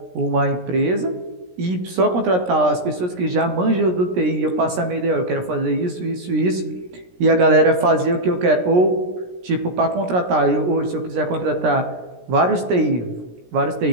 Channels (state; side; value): late; left; 17 ms